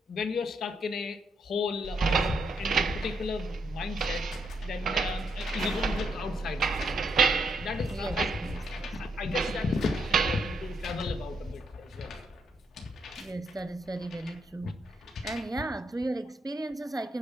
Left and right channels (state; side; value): normal; both; correlation 0.77